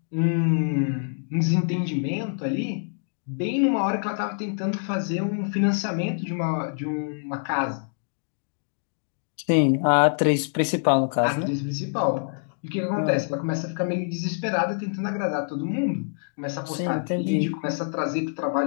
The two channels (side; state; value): right; silent; digital silence